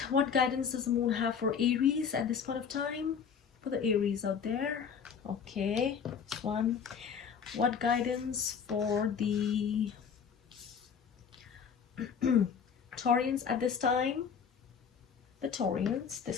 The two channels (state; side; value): quieter; right; 6.8 dB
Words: What guidance does the moon have for Aries at this point of time? For the Aries out there. Okay, this one. What guidance for the Taurians at this time? The Taurians,